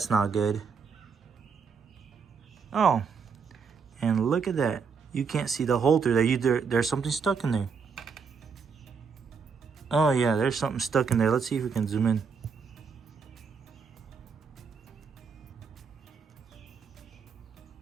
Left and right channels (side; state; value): left; quieter; 5.7 dB